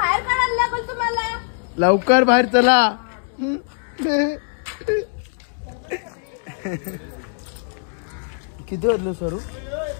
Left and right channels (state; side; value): silent; right; digital silence